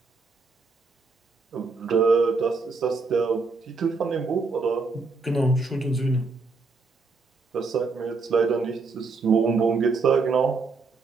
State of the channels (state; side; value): quieter; left; 4.1 dB